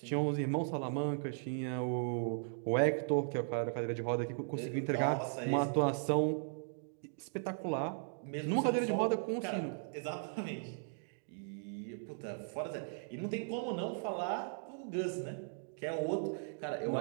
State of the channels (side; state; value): left; silent; digital silence